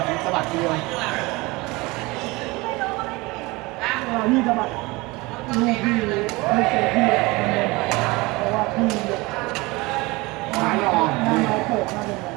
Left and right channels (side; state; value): left; quieter; 23.2 dB